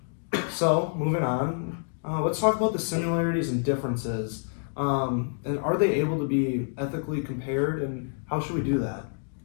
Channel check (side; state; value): right; silent; 58 dB below the other